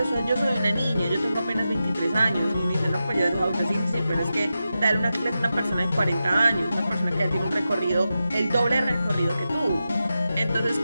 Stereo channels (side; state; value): both; inverted; correlation -0.90